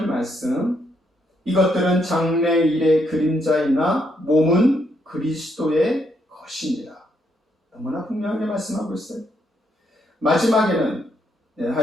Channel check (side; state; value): both; normal; correlation 0.75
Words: 말씀. 이것들은 장래일의 그림자이나 몸은 그리스도의 것이니라. 너무나 분명하게 말씀하고 있어요. 마지막에는